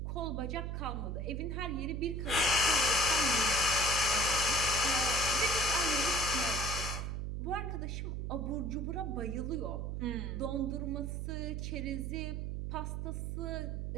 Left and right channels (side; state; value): right; noise; hum, 3 dB below the sound